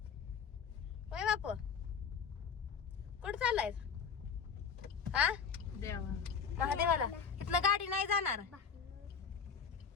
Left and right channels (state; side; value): quieter; right; 6.3 dB